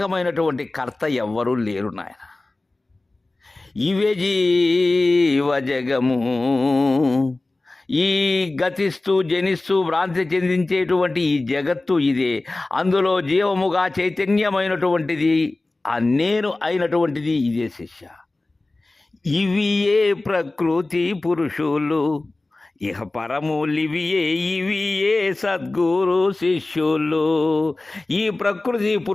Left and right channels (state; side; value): quieter; right; 3.0 dB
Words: కర్త ఎవ్వరూ లేరు నాయన. ఇవే జీవ జగము. ఈ గతిస్తూ జనిస్తూ భ్రాంతి చెందించేటువంటి ఈ జగత్తు ఇదే. అందులో జీవముగా చైతన్యమైనటువంటిది ఆ నేను అయినటువంటిది ఇదే శిష్య. ఇవియే ప్రకృతి పురుషులు ఇహ పరములివియే ఇవియే సద్గురు శిష్యులు. ఈ ప్రకృతి